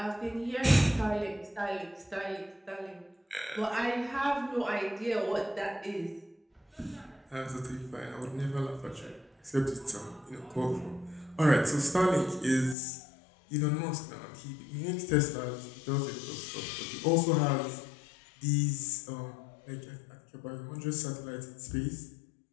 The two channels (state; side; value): drops out; right; at 12.8 s